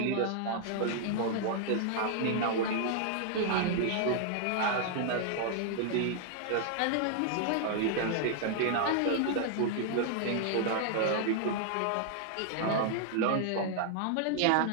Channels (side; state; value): both; different; correlation 0.00